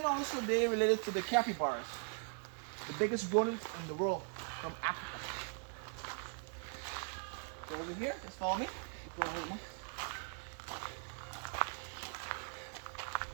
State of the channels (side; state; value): left; silent; 51 dB below the other